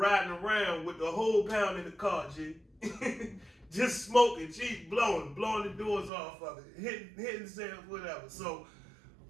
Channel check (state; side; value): drops out; left; at 6.1 s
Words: around with the whole pound in the car, G. Just smoking, G, blowing the doors off of it, hitting sales, whatever. So